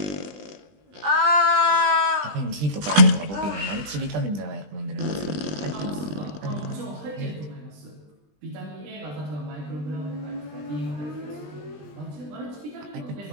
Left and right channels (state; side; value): late; left; 20 ms